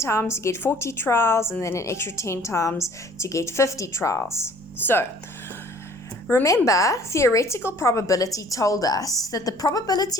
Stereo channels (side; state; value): left; noise; rumble, 29 dB below the sound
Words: to get 40 trials, and then an extra 10 times to get 50 trials. So remember, theoretical probability told us that the probability